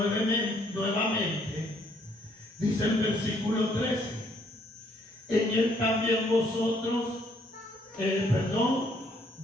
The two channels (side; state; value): both; normal; correlation 0.67